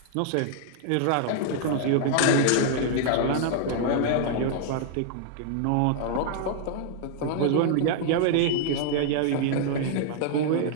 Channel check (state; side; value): different; both; correlation -0.01